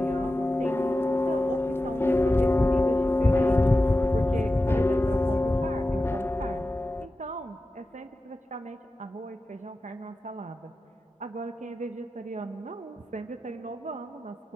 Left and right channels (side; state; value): both; normal; correlation 0.93